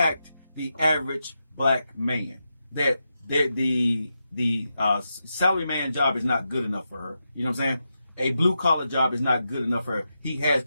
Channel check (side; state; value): both; inverted; correlation -0.87